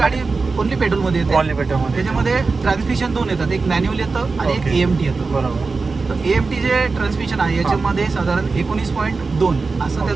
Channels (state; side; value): quieter; left; 4.2 dB